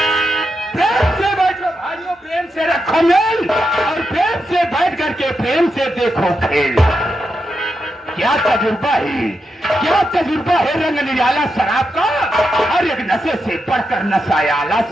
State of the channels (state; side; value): normal; both; correlation 0.86